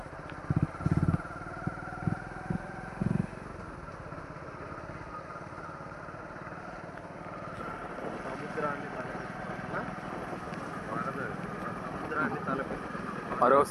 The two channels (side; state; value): both; identical; correlation 1.00